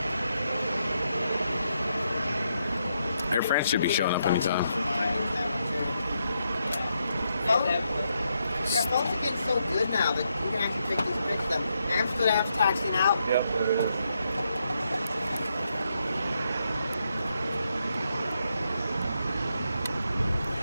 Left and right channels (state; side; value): inverted; both; correlation -0.80